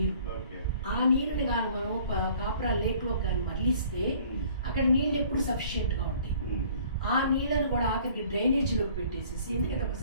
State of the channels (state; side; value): inverted; both; correlation -0.54